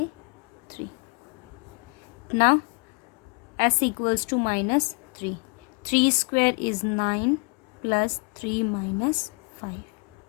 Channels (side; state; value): right; quieter; 34.0 dB